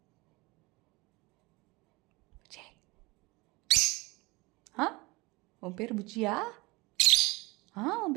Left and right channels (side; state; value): left; quieter; 24.0 dB